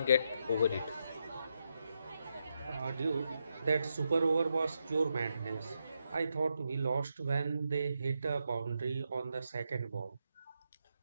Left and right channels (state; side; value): inverted; both; correlation -0.83